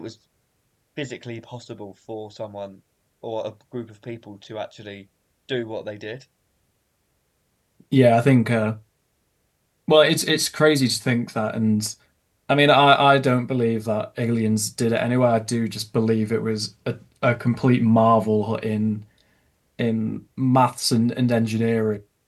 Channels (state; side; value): identical; both; correlation 1.00